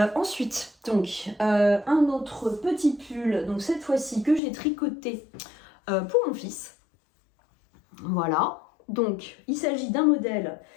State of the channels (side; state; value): right; drops out; at 4.4 s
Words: Ensuite, donc un autre petit pull, donc cette fois-ci que j'ai tricoté pour mon fils. Voilà, donc il s'agit d'un modèle